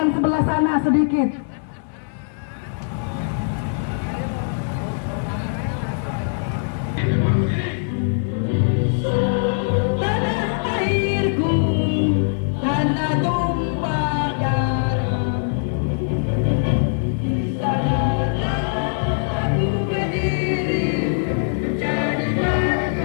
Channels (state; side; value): silent; right; 63 dB below the other